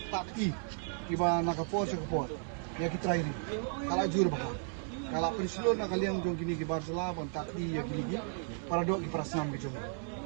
kiba nakapor ya kitrai kala jur ba kalau peristiwa nak kalian jong kini ki Barcelona pun takdi ya kini ki para dok ki prasnam ki jong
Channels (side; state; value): left; silent; 55 dB below the other